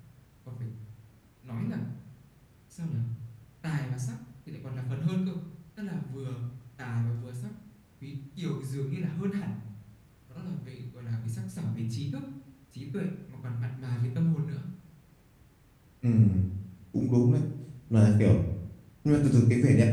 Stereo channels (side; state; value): both; identical; correlation 1.00